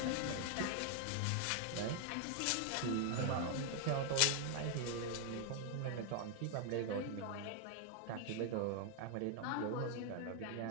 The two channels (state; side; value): different; both; correlation 0.00